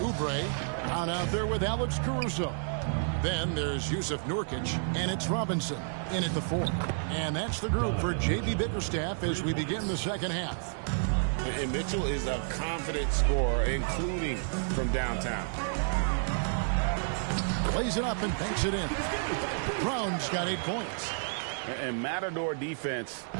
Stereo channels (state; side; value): silent; left; digital silence